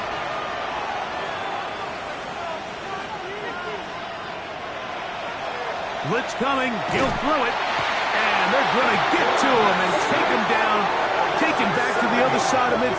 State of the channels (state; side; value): identical; both; correlation 1.00